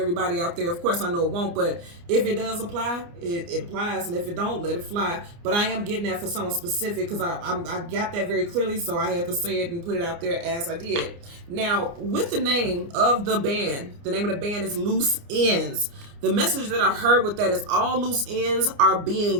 out there. Of course, I know it won't, but if it does apply, it applies, and if it don't, let it fly. But I am getting that for someone specific, because I got that very clearly, so I had to say it and put it out there as I did. Now, with the name of the band, the name of the band is Loose Ends. The message that I heard with that is all loose ends are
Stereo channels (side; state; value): left; late; 29 ms